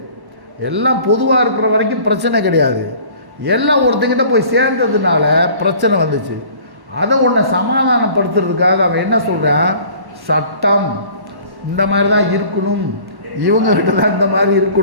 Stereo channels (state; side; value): late; left; 1.1 ms